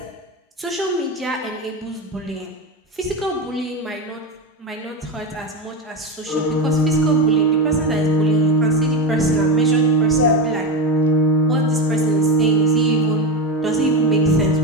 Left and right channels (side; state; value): both; normal; correlation 0.16